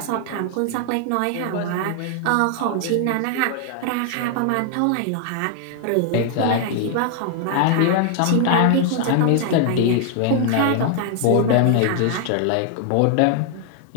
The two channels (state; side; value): different; both; correlation 0.00